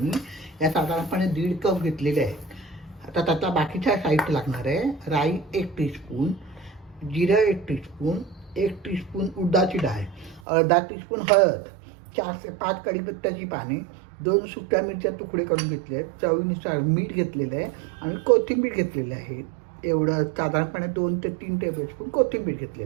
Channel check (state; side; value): drops out; left; at 10.4 s